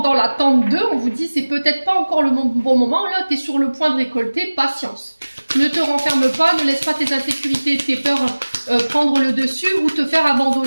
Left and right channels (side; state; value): both; inverted; correlation -1.00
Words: dans l'attente d'eux, on vous dit c'est peut-être pas encore le bon moment. Là, tu es sur le point de récolter, patience. Ne te renferme pas, ne laisse pas tes insécurités, tes peurs prendre le dessus ou te faire